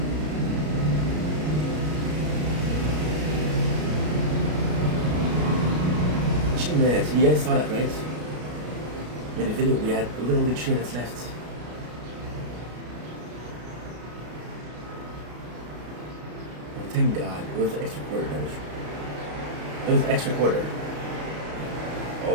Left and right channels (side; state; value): left; late; 33 ms